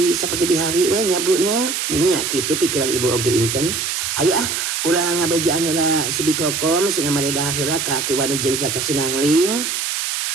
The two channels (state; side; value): noise; right; hiss, 2 dB below the sound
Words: saperti bihari we nya Bu nya. Nya kitu pikiran ibu oge Inten. Hayu urang ngabejaan heula si Bikokom sina maredahar heula ka Aki Wani jeung jaka Sinangling.